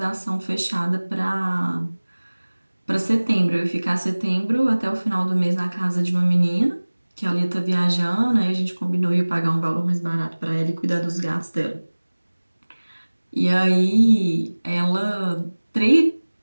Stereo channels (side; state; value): both; inverted; correlation -1.00